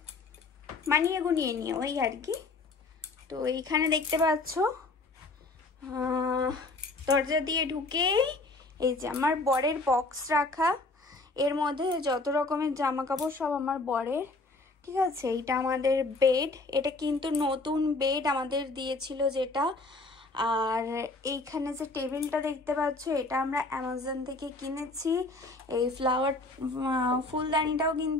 মানিয়ে গুনিয়ে নিয়ে ওই আর কি। তো এইখানে দেখতে পাচ্ছ দরজা দিয়ে ঢুকে এই যে আমার বরের বক্স রাখা, এর মধ্যে যত রকমের জামা কাপড় সব আমার বরের, ঠিক আছে? এইটা আমাদের বেড, এটা কিন্তু নতুন বেড আমাদের দিয়েছিল যেটা। আর এইখানে যে টেবিলটা দেখতে পাচ্ছ, এটা আমরা অ্যামাজন থেকে কিনেছি। এই ফুলদানিটাও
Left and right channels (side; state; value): right; quieter; 3.3 dB